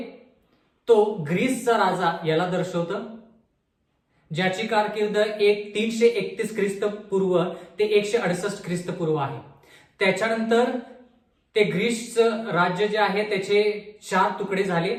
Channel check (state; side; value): identical; both; correlation 1.00